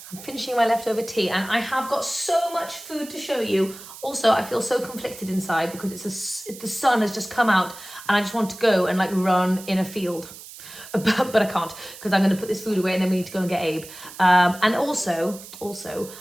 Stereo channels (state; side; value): noise; right; hiss, 16 dB below the sound